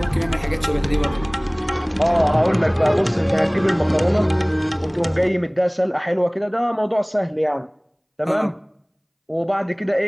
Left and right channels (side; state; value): both; identical; correlation 1.00